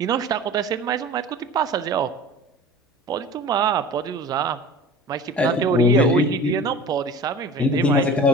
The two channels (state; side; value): normal; both; correlation 0.39